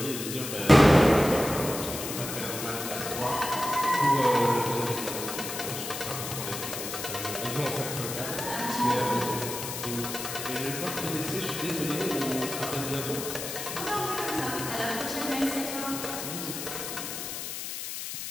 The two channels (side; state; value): left; noise; hiss, 6 dB below the sound